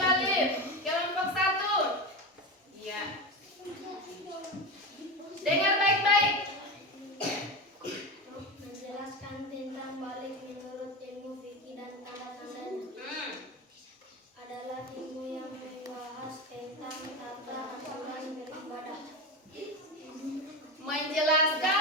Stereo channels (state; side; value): normal; both; correlation 0.20